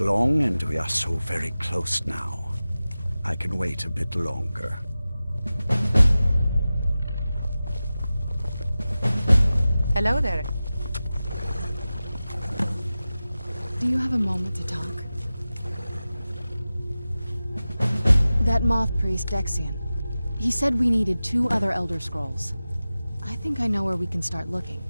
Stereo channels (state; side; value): inverted; both; correlation -0.95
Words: and we are so very close now. I can wait a bit longer. Hello there. Do you have a moment to talk? That moth priest, Dexion. He said we needed 2 other Elder Scrolls. I think I know where we can start looking.